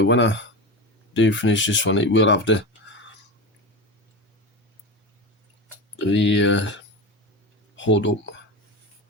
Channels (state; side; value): normal; both; correlation 0.24